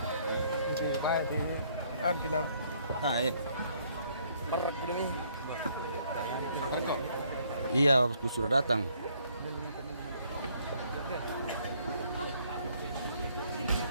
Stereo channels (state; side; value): inverted; both; correlation -0.66